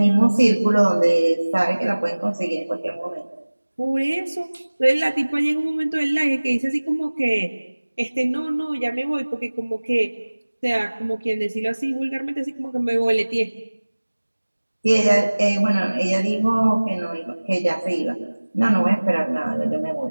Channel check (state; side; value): inverted; both; correlation -1.00